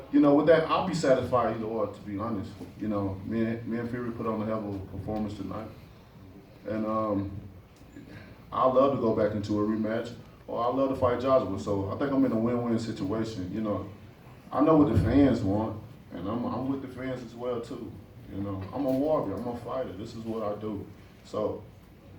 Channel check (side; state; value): both; identical; correlation 1.00